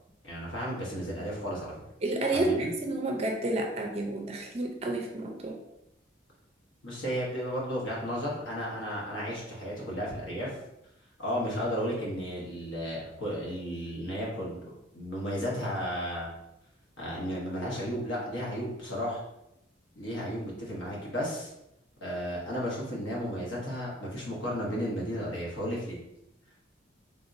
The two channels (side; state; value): both; normal; correlation 0.49